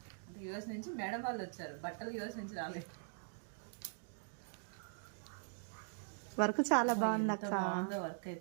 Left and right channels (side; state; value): left; silent; digital silence